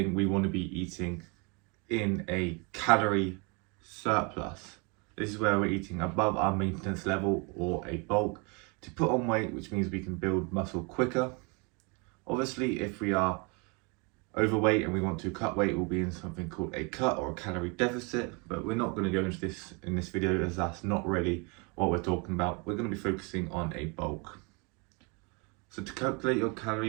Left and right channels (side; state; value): left; quieter; 31.4 dB